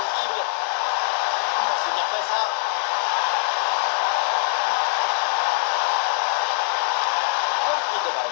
Oh, c'est bien fait ça. Bonne prise de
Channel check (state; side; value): silent; right; 64 dB below the other